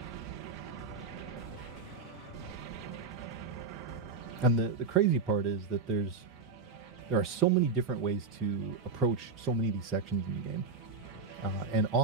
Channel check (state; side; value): quieter; left; 4.7 dB